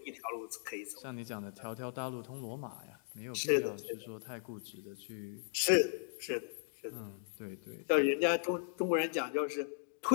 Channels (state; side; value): silent; right; digital silence